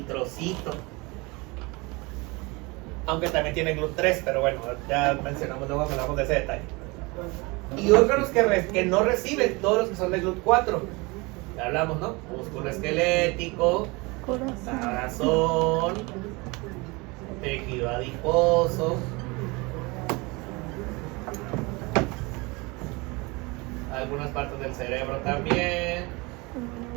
Aunque también tiene GLUT3, pero bueno, ya mencionamos, luego hablamos de ese detalle. Y órganos que no reciben, todos los que son de GLUT4. Ya hablamos, ¿no? Músculo esquelético, corazón, tejido adiposo, algunas partes del cerebro también.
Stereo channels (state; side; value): quieter; left; 25.7 dB